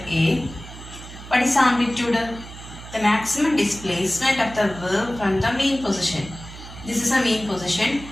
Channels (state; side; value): noise; right; hum, 14 dB below the sound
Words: A. What is amplitude? The maximum displacement of the wave from the mean position. This is a mean position,